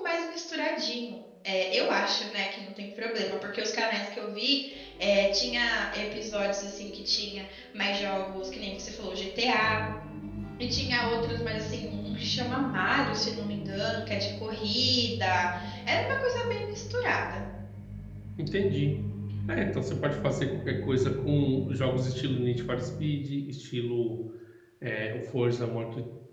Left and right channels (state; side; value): identical; both; correlation 1.00